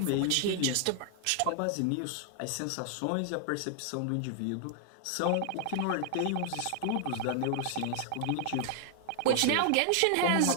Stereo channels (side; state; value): both; different; correlation 0.00